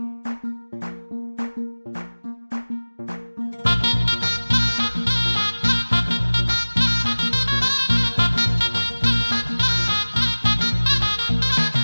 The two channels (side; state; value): both; inverted; correlation -1.00